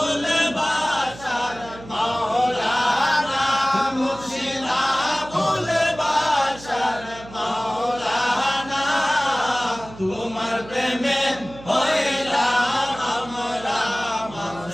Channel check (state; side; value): noise; right; hum, 17 dB below the sound